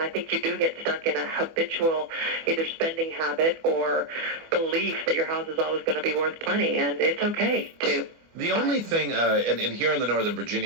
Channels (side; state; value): left; late; 24 ms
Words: think you do get stuck in a habitual either spending habit or belief that your house is always going to be worth plenty, and it's okay to. The only thing, and here in the Northern